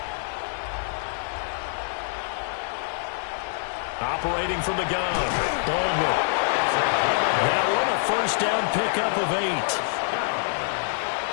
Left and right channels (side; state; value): right; silent; digital silence